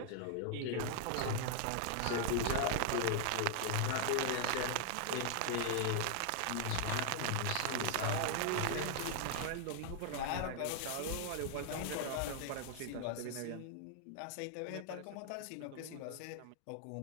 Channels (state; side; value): different; both; correlation 0.00